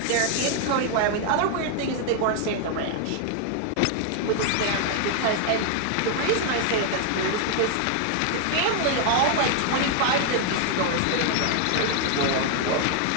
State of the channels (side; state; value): both; different; correlation 0.00